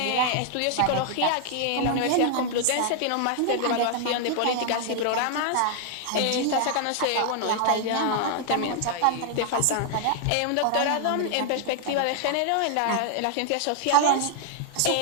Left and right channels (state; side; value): different; both; correlation 0.00